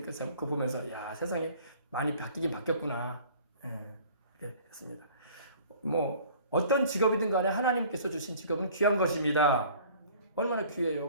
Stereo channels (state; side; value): inverted; both; correlation -0.50